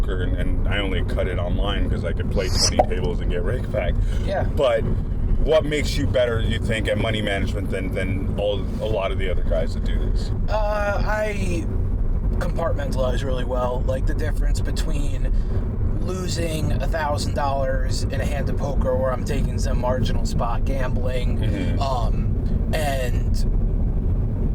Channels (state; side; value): identical; both; correlation 1.00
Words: and I only cut it online because I could play 20 tables and get rake back. Yeah. But what makes you better, you think, at money management than a lot of the other guys that do this? I compartmentalize really well. The difference between losing $1,000 in a hand of poker where I'm taking some marginal spot gambling, mm-hmm. And